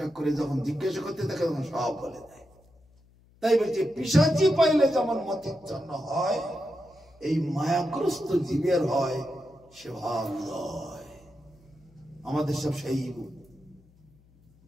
এক করে যখন জিজ্ঞাসা করতে থাকে, তখন সব বলে দেয়। তাই বলছে, পিশাচি পাইলে যেমন মতিচ্ছন্ন হয়, এই মায়াগ্রস্ত জীবের হয় সেবা উদয়। আমাদের সব সেই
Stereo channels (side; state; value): left; noise; hum, 29 dB below the sound